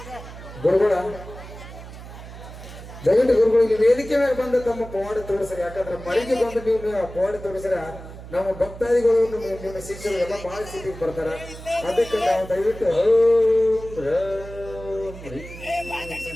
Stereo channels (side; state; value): right; noise; hum, 14 dB below the sound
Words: ಗುರುಗಳ ದಯವಿಟ್ಟು ಗುರುಗಳು ಇಲ್ಲಿ ವೇದಿಕೆ ಮೇಲೆ ಬಂದು ತಮ್ಮ ಪವಾಡ ತೋರಿಸ್ರಿ. ಯಾಕಂದ್ರೆ ಮರಿಗೆ ಬಂದು ನೀವು ಪವಾಡ ತೋರಿಸ್ರ ನಮ್ಮ ಭಕ್ತಾದಿಗಳು ನಿಮ್ಮ ಶಿಷ್ಯರು ಎಲ್ಲ ಬಹಳ ಸಿಟಿಗೆ ಬರ್ತಾರ. ಅದಕ್ಕೆ ನಾವು ದಯವಿಟ್ಟು ಓಂ ರಾಮ್ ರೀಂ